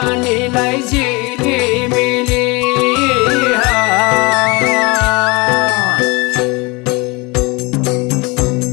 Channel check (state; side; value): quieter; right; 25.7 dB